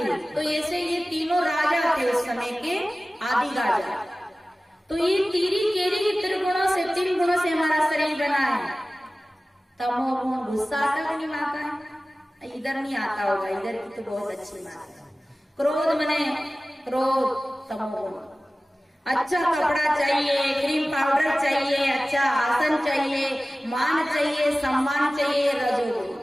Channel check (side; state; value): both; normal; correlation 0.97